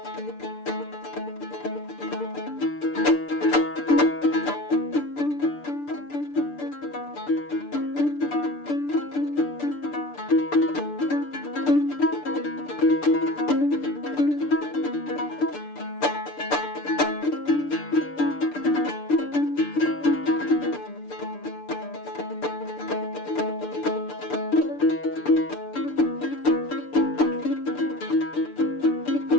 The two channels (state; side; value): late; right; 6.8 ms